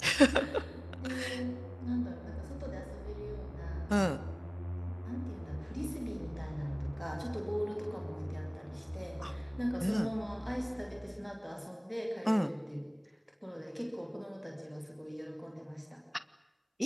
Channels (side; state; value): both; identical; correlation 1.00